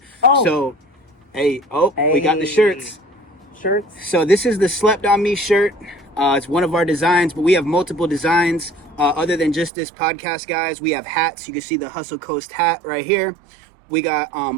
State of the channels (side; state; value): left; drops out; at 9.7 s